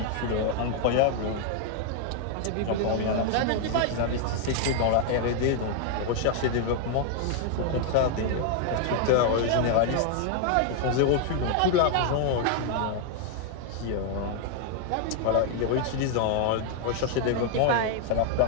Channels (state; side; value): different; both; correlation 0.00